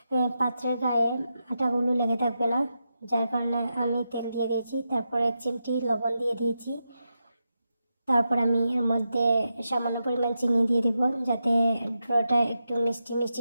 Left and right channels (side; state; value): both; inverted; correlation -0.87